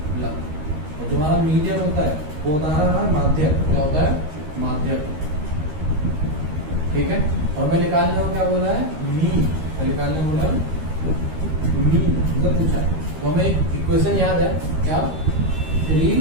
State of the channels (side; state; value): left; late; 13 ms